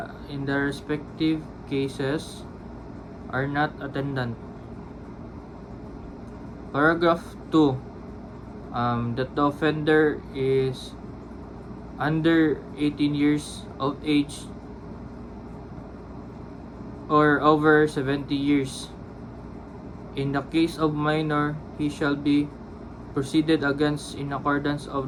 in the respective cases are not attendant. Paragraph 2. That the offender is under 18 years of age or over 70 years. In the case of minor, he shall be proceeded against in accordance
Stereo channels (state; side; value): identical; both; correlation 1.00